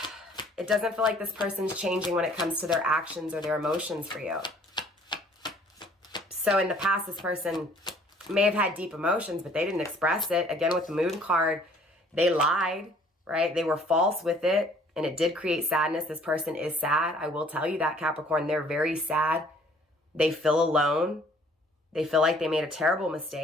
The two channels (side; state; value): both; normal; correlation 0.57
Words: it doesn't feel like this person's changing when it comes to their actions or their emotions for you. So in the past, this person may have had deep emotions, but they didn't express it. Again, with the moon card, they lied, right? They were false with it, and it did create sadness. This person is sad. I will tell you that, Capricorn. They're very sad. They feel alone. They feel like they made a terrible